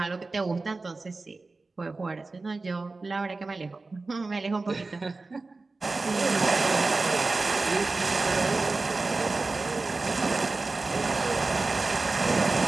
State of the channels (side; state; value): left; quieter; 3.6 dB